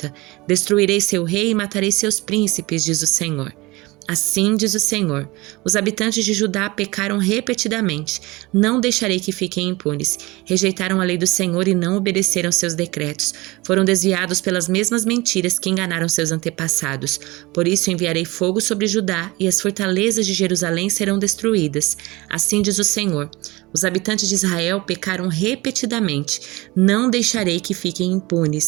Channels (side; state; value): left; quieter; 22.3 dB